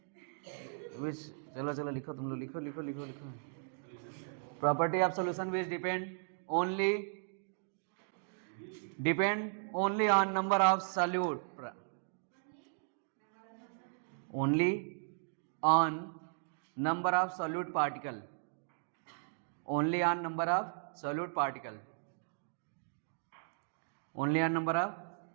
विच, चलो चलो लिखो, तुम लोग लिखो लिखो लिखो लिखो। Property of solution which depend only on number of solute, only on number of solute particle, only on number of solute particle, only on number of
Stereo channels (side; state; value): left; silent; digital silence